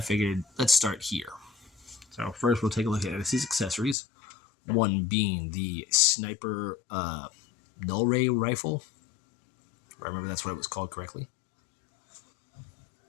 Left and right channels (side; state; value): right; drops out; at 4.0 s